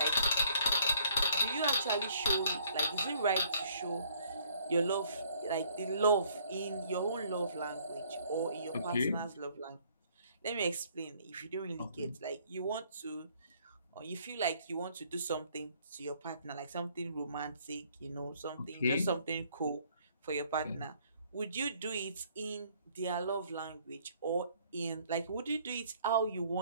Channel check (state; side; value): inverted; both; correlation -0.62